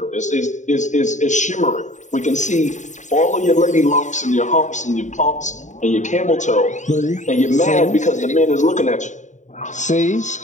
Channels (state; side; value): late; right; 0.35 ms